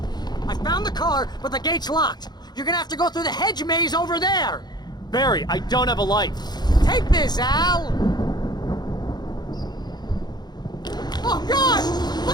I found the car, but the gate's locked. You're gonna have to go through the hedge maze over there! Barry, I don't have a light. Take this, Al! Oh, God!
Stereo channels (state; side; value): late; right; 0.20 ms